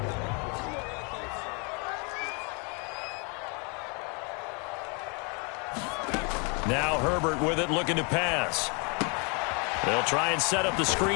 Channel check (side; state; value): right; quieter; 33.9 dB